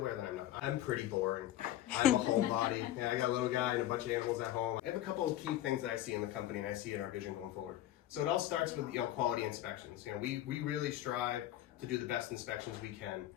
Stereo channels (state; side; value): quieter; right; 13.5 dB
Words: that I'm not. I'm pretty boring. I'm a homebody. I got a little guy and a bunch of animals at home. I have a couple of key things that I see in the company and I see in our vision going forward. So it all starts with quality inspections. We really strive to do the best inspections we can